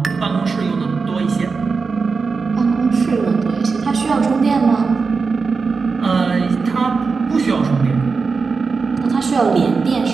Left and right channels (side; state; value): left; quieter; 4.7 dB